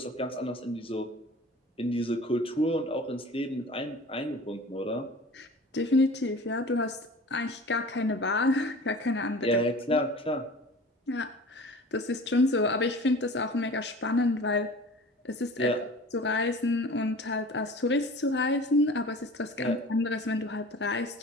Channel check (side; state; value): both; normal; correlation 0.41